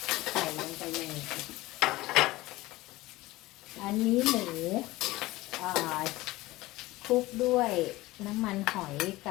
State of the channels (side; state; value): right; quieter; 18.9 dB